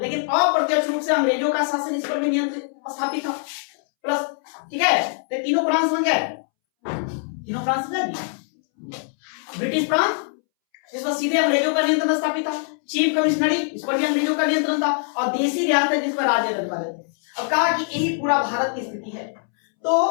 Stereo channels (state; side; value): silent; right; 64 dB below the other